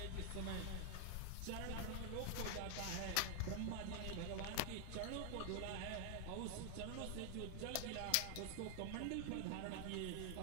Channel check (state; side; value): different; both; correlation 0.00